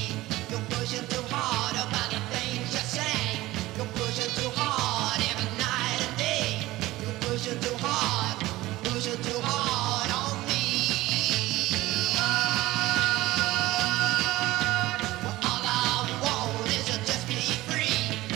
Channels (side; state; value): left; quieter; 17.9 dB